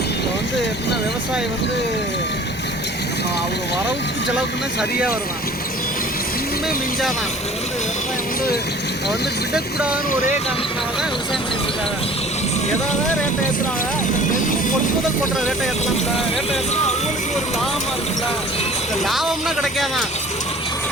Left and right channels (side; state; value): both; normal; correlation 0.47